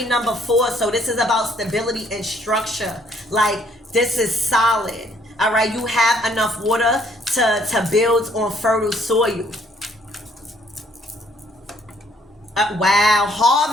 number 4. So this is about stability and structure. Like, this is solid. All right. You have enough water to build on fertile soil. Wow.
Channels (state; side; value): normal; both; correlation 0.64